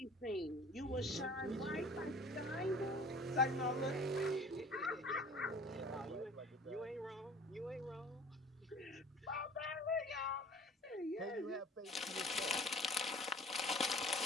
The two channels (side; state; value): both; normal; correlation 0.47